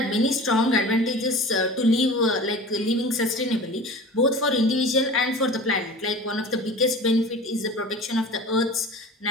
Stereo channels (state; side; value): normal; both; correlation 0.38